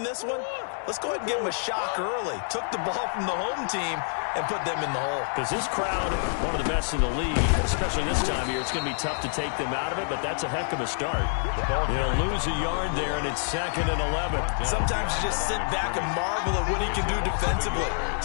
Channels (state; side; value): silent; right; digital silence